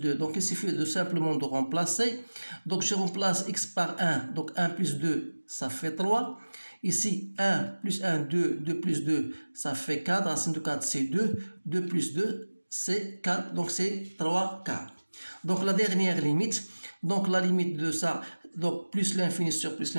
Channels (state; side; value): inverted; both; correlation -1.00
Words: Donc il suffit de simplement de remplacer. Donc je remplace x par 1, donc 1 plus 2, ça fait 3. Ici, 1 plus 1, 2, 2 plus 2, ça fait 4. Racine de 4, c'est 2. 2 plus 2, c'est 4. Donc, c'est 3 quarts. Donc, la dernière limite. Donc, la limite de ça, donc plus l'infini sur plus